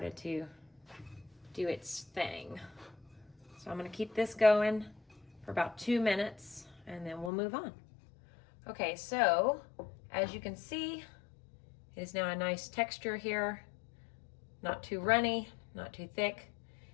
to do its thing. So I'm gonna keep this going for about 2 minutes, and then we'll move on. Okay, so as you can see, it is now a nice texture here. Not too runny, not too thick.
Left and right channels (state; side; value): drops out; right; at 7.3 s